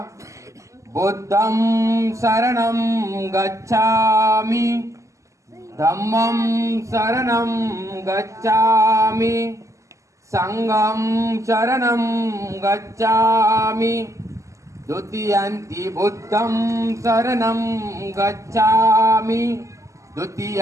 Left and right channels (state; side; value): late; left; 0.15 ms